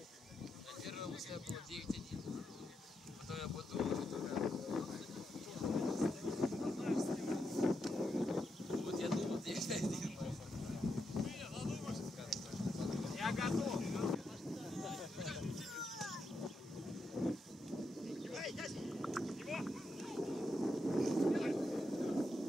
На первом мысли было 9-1. Потом я подумал, что вот я думал 9-1. Я готов!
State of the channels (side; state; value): both; normal; correlation 0.83